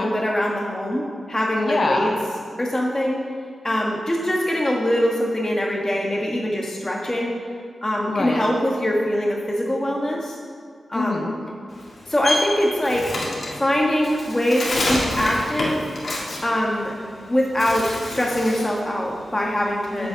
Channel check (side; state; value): both; normal; correlation 0.94